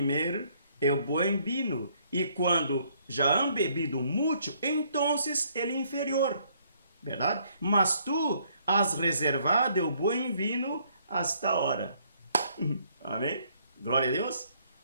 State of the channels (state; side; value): inverted; both; correlation -0.66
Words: o bom vinho, e quando já han bebido muito, então ele é inferior, verdade? Mas tu has reservado o bom vinho hasta ahora. Amém? Glória a Deus.